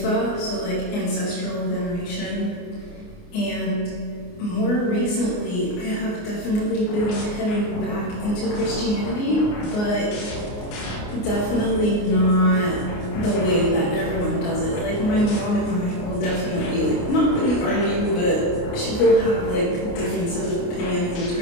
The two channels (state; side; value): late; right; 29 ms